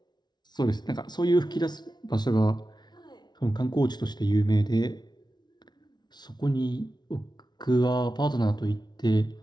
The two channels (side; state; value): right; late; 0.20 ms